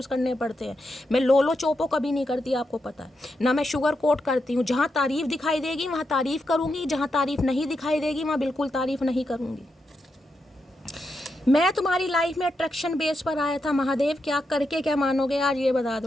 करने पड़ते हैं। मैं लोलो चोपो कभी नहीं करती, आपको पता है ना। मैं शुगर कोट करती हूँ, जहाँ तारीफ दिखाई देगी वहाँ तारीफ करूँगी, जहाँ तारीफ नहीं दिखाई देगी वहाँ बिल्कुल तारीफ नहीं करूँगी। मैं तुम्हारी लाइफ में अट्रैक्शन बेस पर आया था महादेव, क्या करके क्या मानोगे आज ये बता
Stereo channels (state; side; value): normal; both; correlation 0.85